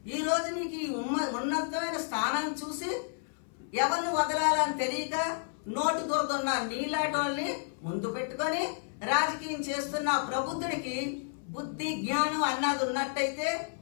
ఈ రోజు నీకు ఈ ఉన్నతమైన స్థానం చూసి ఎవరిని వదలాలని తెలియక నోటు దురదున్న నీలాటోల్ని ముందు పెట్టుకొని రాజకీయం చేస్తున్న ప్రబుద్ధుడికి బుద్ధి జ్ఞానం అన్నది ఉన్నట్టయితే,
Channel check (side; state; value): right; silent; 57 dB below the other